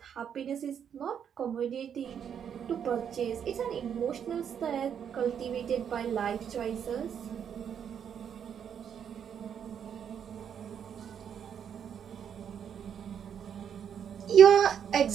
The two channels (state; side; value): quieter; left; 8.2 dB